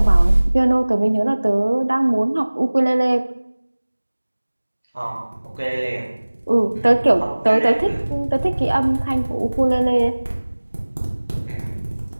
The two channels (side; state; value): both; inverted; correlation -1.00